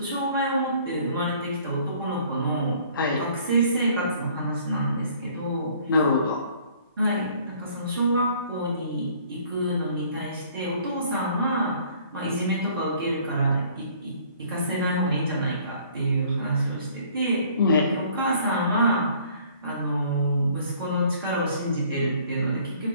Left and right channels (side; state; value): both; inverted; correlation -0.57